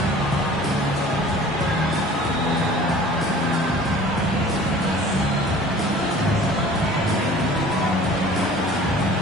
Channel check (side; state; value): both; normal; correlation 0.46